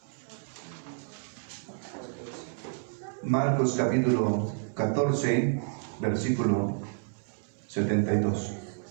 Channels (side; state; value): left; silent; 58 dB below the other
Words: Marcos capítulo 14, versículo 72.